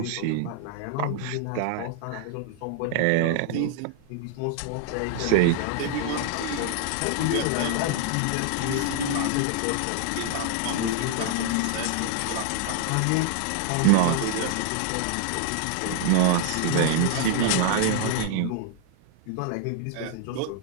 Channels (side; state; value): both; different; correlation 0.00